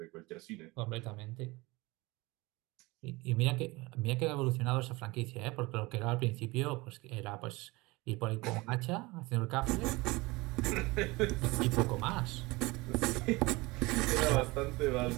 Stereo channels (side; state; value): left; quieter; 22.8 dB